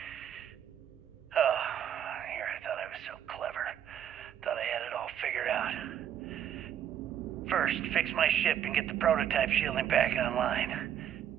Oh, here I thought I was so clever. Thought I had it all figured out. First, fix my ship and get the prototype shielding back online.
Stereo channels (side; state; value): left; quieter; 9.8 dB